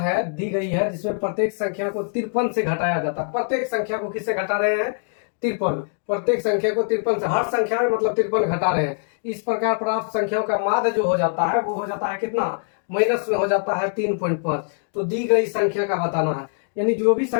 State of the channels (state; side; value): silent; right; digital silence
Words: दी गई है जिसमें प्रत्येक संख्या को 53 से घटाया जाता है। प्रत्येक संख्या को किससे घटा रहे हैं, 53, प्रत्येक संख्या को 53 से, हर संख्या में मतलब 53 घटा रहे हैं। इस प्रकार प्राप्त संख्याओं का माध्य जो हो जाता है वो हो जाता है कितना, माइनस में हो जाता है 3.5। तो दी गई संख्या का बताना है, यानी जो भी